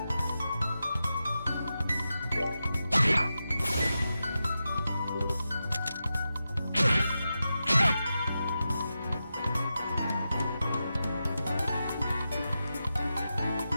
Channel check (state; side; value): inverted; both; correlation -0.90